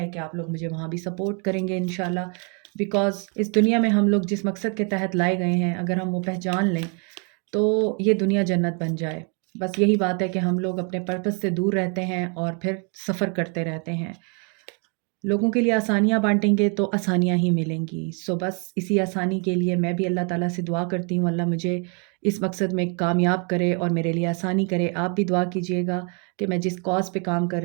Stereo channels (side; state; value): left; quieter; 36.9 dB